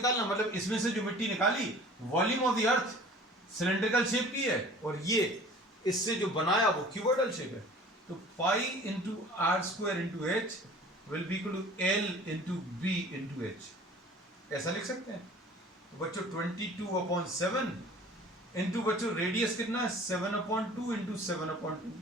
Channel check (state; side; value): normal; both; correlation 0.46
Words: मतलब इसमें से जो मिट्टी निकाली, volume of the earth cylindrical shape की है और ये इससे जो बनाया वो क्यूबॉइडल शेप है। तो pi into r square into h will be equal to l into b into h, ऐसा लिख सकते हैं। तो बच्चों 22/7 इंटू बच्चों रेडियस कितना है 7/2 इंटू 7/2